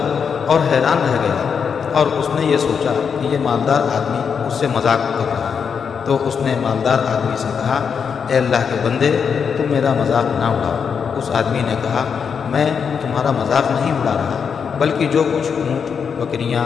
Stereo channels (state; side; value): quieter; right; 6.6 dB